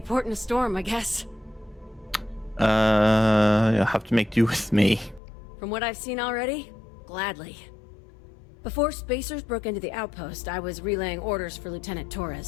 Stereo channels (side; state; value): right; drops out; at 5.2 s